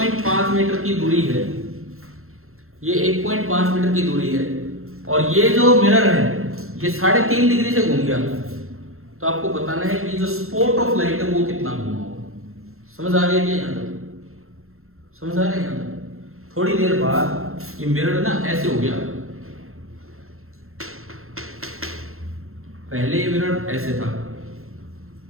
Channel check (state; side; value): late; left; 0.62 ms